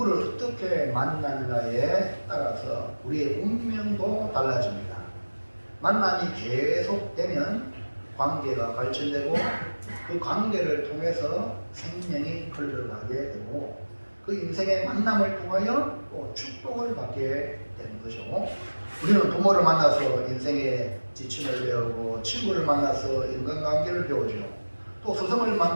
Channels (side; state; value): both; inverted; correlation -1.00